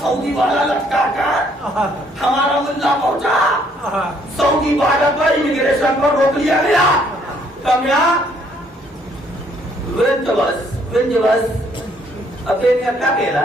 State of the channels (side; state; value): both; normal; correlation 0.66